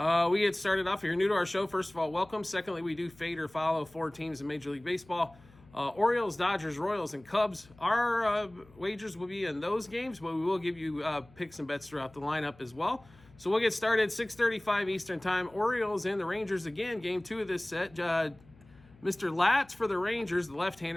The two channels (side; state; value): left; noise; hum, 26 dB below the sound